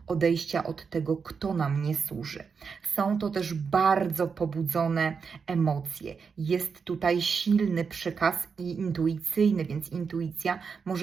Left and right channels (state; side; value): quieter; left; 5.7 dB